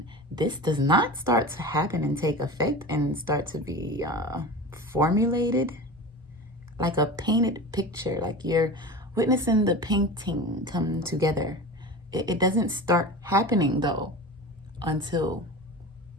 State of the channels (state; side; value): normal; both; correlation 0.31